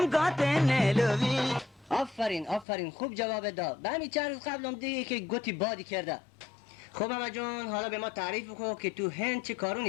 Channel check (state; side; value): drops out; right; at 2.7 s